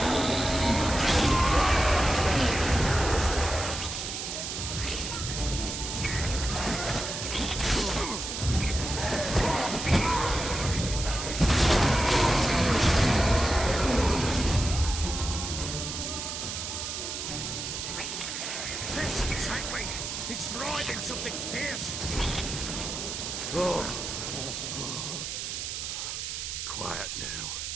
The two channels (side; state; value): right; noise; hiss, 5 dB below the sound